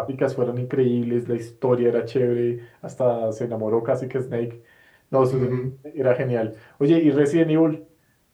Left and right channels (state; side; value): identical; both; correlation 1.00